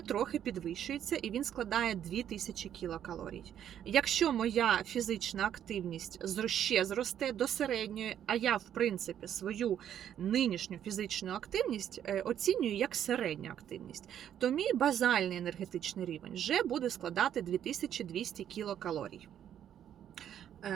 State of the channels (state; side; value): quieter; left; 10.0 dB